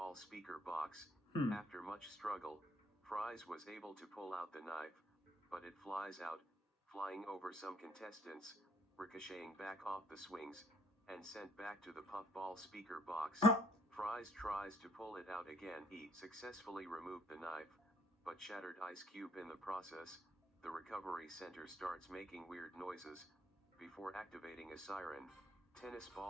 speaker box. After much struggle, Fries was able to pull out the knife, but it flies out, flying over some contestants, ricocheting back off the swings, and sent back to the puffball speaker box. Fries tries to pull it out again. He successfully removed the knife, but shattered Ice Cube in the process. The recovery center starts making weird noises. Before activating a siren, Tennis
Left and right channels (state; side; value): normal; both; correlation 0.66